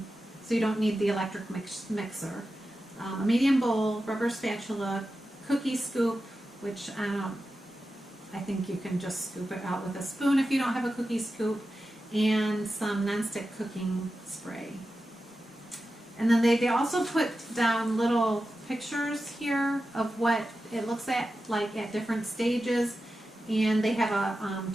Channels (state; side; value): normal; both; correlation 0.92